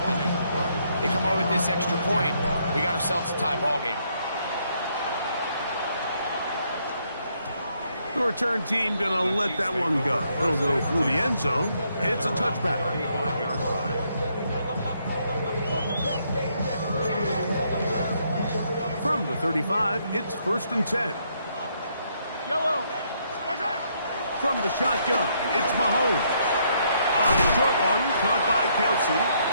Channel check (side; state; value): both; inverted; correlation -0.72